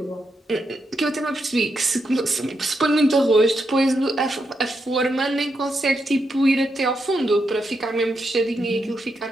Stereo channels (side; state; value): both; normal; correlation 0.83